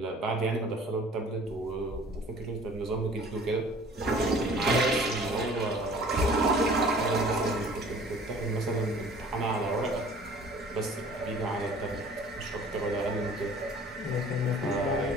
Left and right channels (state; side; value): normal; both; correlation 0.49